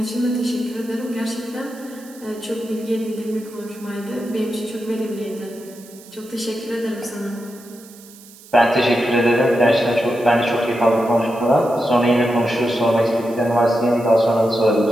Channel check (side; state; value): right; noise; hiss, 22 dB below the sound